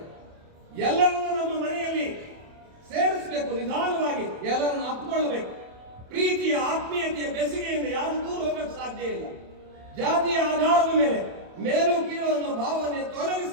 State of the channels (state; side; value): late; left; 27 ms